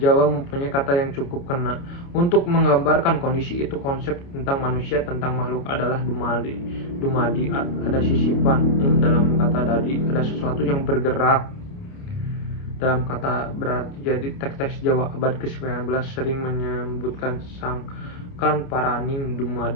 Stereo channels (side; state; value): right; late; 29 ms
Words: mempunyai kata yang cukup kena untuk menggambarkan kondisi itu. Konsep tentang manusia, tentang makhluk adalah dumadi, ada sisipan. Dalam kata dadi ada sesuatu yang bergerak. Dalam kata berarti. Jadi teks-teks Jawa abad ke-19 sering menyebutkan sangkan paraning